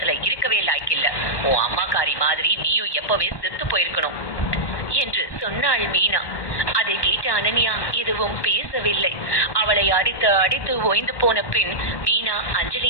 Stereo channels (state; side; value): late; right; 1.1 ms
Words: இருக்கவே லாய்க்கில்ல. உன் அம்மாக்காரி மாதிரி நீயும் எப்பவே செத்து போயிருக்கணும் என்று சொன்னாள் மீனா. அதை கேட்ட அனன்யா எதுவும் பேசவில்லை. அவளை அடித்து ஓய்ந்து போன பின் மீனா